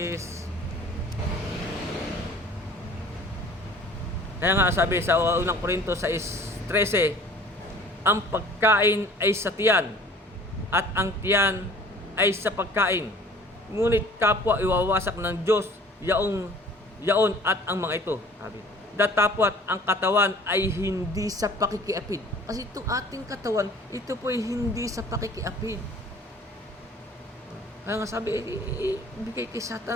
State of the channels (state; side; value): normal; both; correlation 0.50